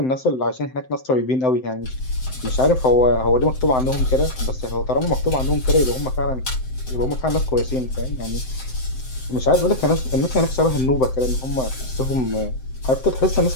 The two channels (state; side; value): late; right; 7.8 ms